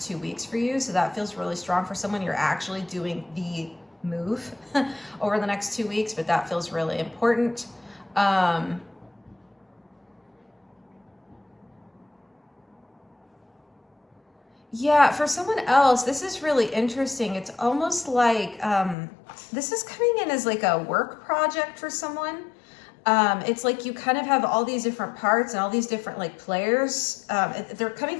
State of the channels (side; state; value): right; drops out; at 18.9 s